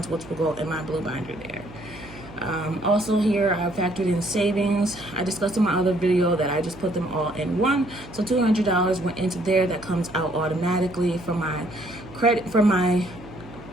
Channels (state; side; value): noise; right; hum, 17 dB below the sound